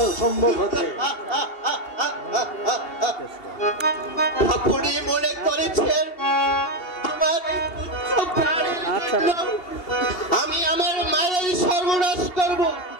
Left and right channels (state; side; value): late; right; 2.7 ms